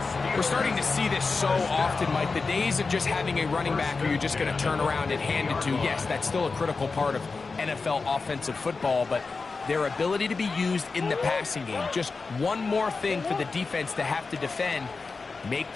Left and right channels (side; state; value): right; quieter; 4.3 dB